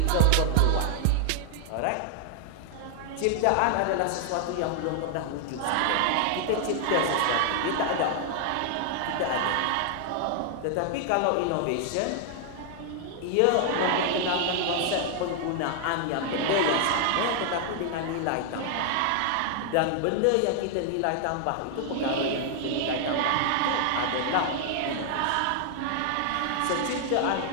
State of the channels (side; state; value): both; different; correlation 0.00